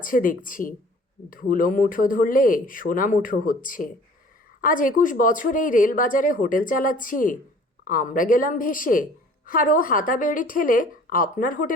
দেখছি। ধুলো মুঠো ধরলে সোনা মুঠো হচ্ছে। আজ 21 বছর এই রেলবাজারে হোটেল চালাচ্ছি। আমরা গেলাম ভেসে, আর ও হাতাবেড়ি ঠেলে আপনার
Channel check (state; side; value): normal; both; correlation 0.50